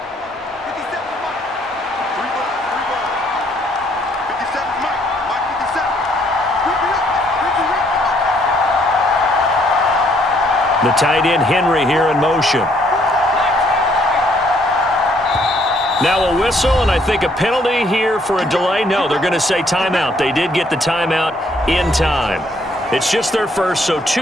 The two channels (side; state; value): both; normal; correlation 0.67